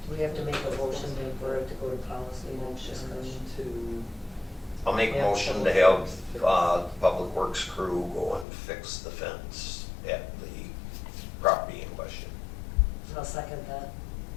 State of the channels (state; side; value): drops out; right; at 8.5 s